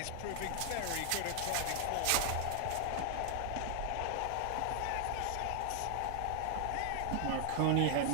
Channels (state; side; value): different; both; correlation 0.00